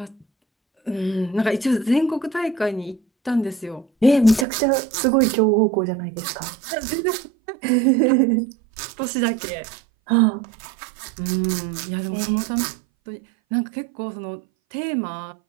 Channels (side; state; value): left; drops out; at 4.5 s